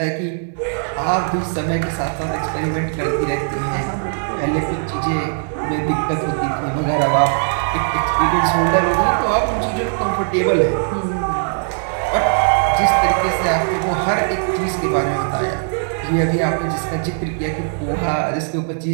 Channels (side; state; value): left; silent; 64 dB below the other